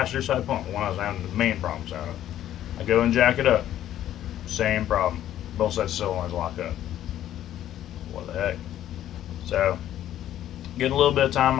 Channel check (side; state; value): right; quieter; 12.0 dB